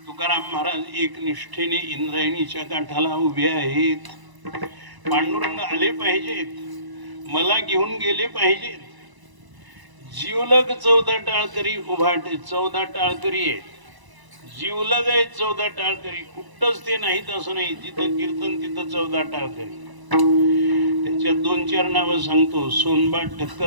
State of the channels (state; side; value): late; left; 1.0 ms